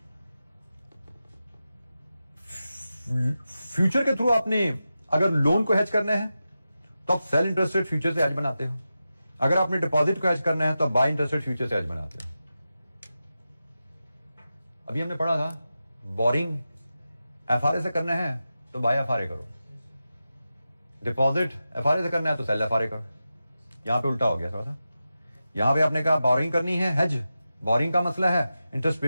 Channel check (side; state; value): both; inverted; correlation -0.92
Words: फ्यूचर के थ्रू आपने अगर लोन को हेज करना है तो आप सेल इंटरेस्ट रेट फ्यूचर से हेज बनाते हो, अगर आपने डिपॉजिट को हेज करना है तो आप बाय इंटरेस्ट रेट फ्यूचर से हेज बनाते हो। अभी हमने पढ़ा था बोरिंग FRA से करना है तो बाय FRA करो, डिपॉजिट FRA से करना है तो सेल FRA करो। यहां पे उल्टा हो गया थोड़ा सा, यहां पे आपने कहा बोरिंग करनी है हेज, बोरिंग का मसला है, इंटरेस्ट